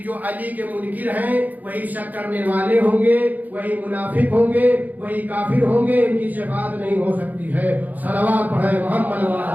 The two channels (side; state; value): left; late; 0.081 ms